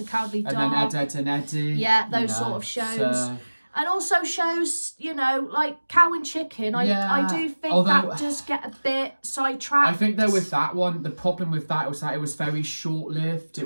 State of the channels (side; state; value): both; inverted; correlation -1.00